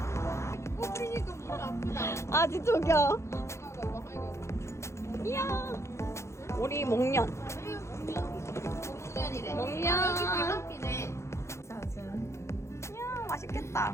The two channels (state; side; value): late; right; 0.13 ms